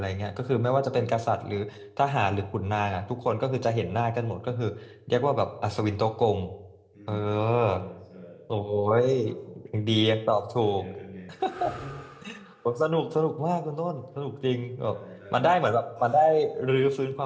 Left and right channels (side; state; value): both; identical; correlation 1.00